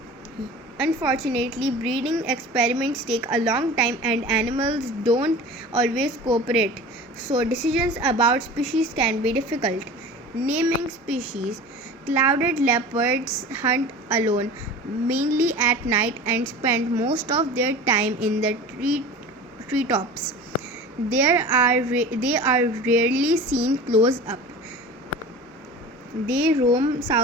Unfortunately, breeding experiments take a long time and animals don't always cooperate, so decisions about species can be difficult. Naming species. Clouded leopards hunt alone, mainly at night, and spend most of their time in the treetops. They are rarely seen close up. They roam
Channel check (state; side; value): normal; both; correlation 0.37